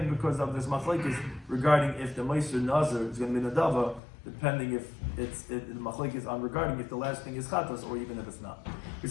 because of this machlekes regarding if the Ma'aser Nazir is going to be Nadava, depending if the machlekes on regarding if the last thing is Chatas or even if it's not. We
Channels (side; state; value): right; drops out; at 4.0 s